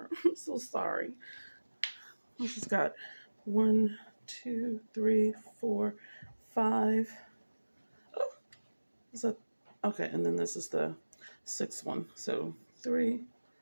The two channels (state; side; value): inverted; both; correlation -1.00